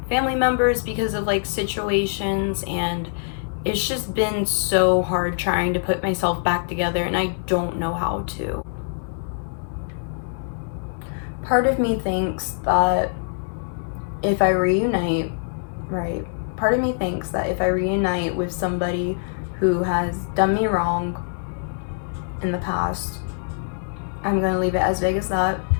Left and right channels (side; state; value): right; silent; 63 dB below the other